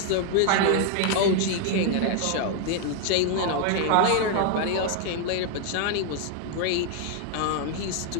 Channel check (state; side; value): different; both; correlation 0.00